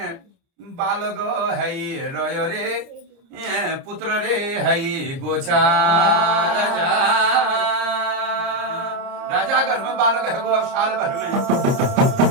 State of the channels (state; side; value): late; left; 30 ms